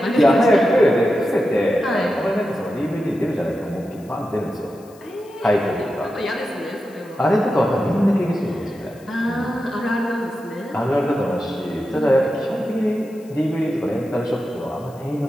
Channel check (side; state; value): left; noise; hiss, 27 dB below the sound